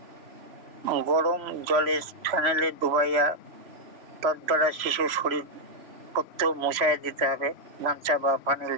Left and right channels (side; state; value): left; late; 3.0 ms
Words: গরম জলে ফেনেলে ডুবাইয়া তদ্বারা শিশুর শরীর পত্র মুছাইয়া দিতে হবে, গামছা বা ফানেল